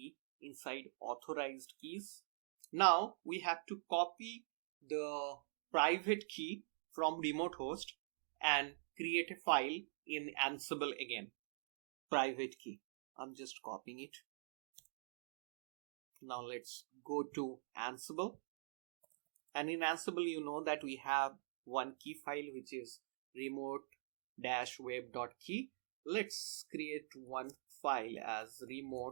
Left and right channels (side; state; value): left; silent; digital silence